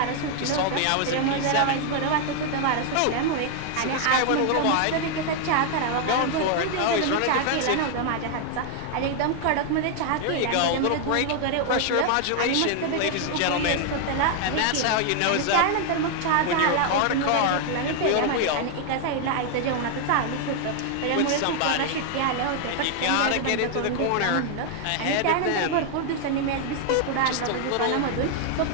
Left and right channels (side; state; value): both; different; correlation 0.00